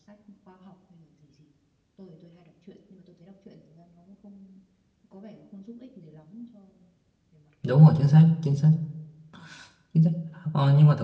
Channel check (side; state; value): both; identical; correlation 1.00